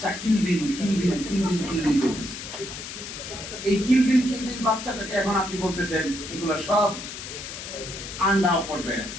কিলবিল কিলবিল কিলবিল কিলবিল করতেছে। এই কিলবিল কিলবিল বাচ্চাটাকে এখন আপনি বলতেছেন এগুলো সব আন্ডা পর্যায়ে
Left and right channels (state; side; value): noise; left; hiss, 9 dB below the sound